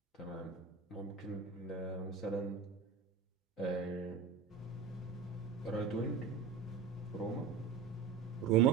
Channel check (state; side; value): quieter; left; 6.1 dB